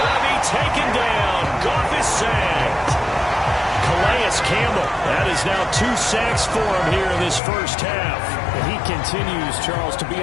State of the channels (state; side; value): drops out; right; at 7.4 s